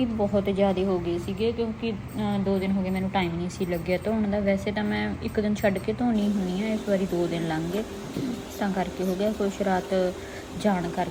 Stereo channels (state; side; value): identical; both; correlation 1.00